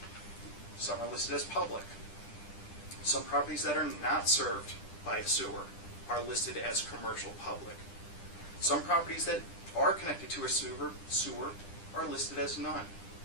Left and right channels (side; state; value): right; late; 10 ms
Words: some are listed as public. Some properties that are not served by a sewer are listed as commercial public. Some properties that are connected to a sewer are listed as none.